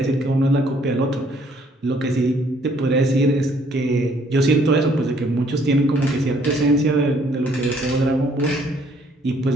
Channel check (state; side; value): normal; both; correlation 0.63